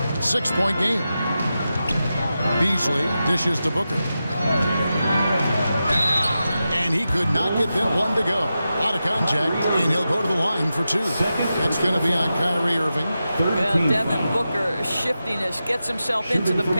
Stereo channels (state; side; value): inverted; both; correlation -0.91